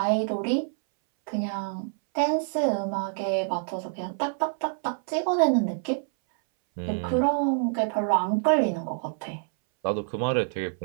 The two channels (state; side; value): silent; left; 60 dB below the other